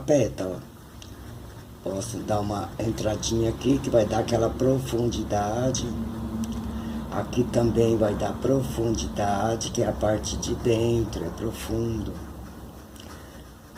Posso dar uma entradinha aqui, que vai dar aquela profundidade. Aqui também vai dar profundidade, que é a parte de dentro, é profundo.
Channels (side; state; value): both; identical; correlation 1.00